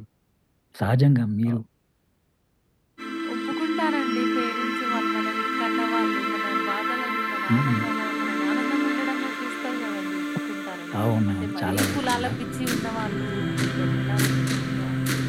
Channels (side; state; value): both; identical; correlation 1.00